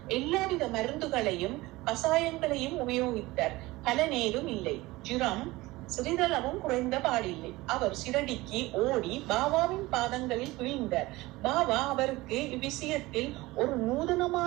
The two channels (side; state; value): left; quieter; 20.0 dB